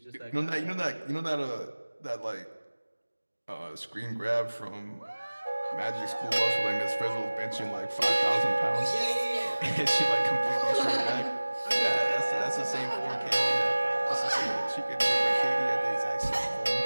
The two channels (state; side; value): inverted; both; correlation -1.00